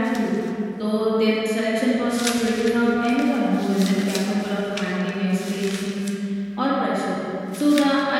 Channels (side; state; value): both; identical; correlation 1.00